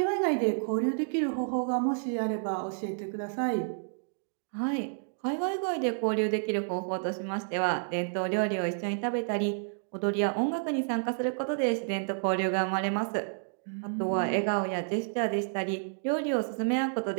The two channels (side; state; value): left; silent; digital silence